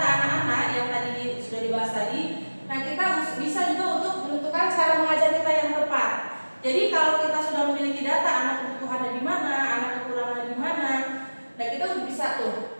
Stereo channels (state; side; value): inverted; both; correlation -1.00